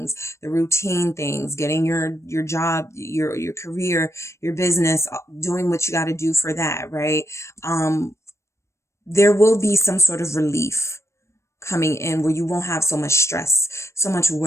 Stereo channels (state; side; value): late; right; 0.13 ms